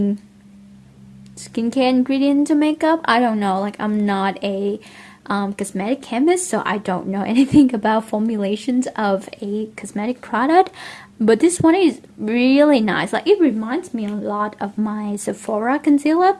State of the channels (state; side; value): identical; both; correlation 1.00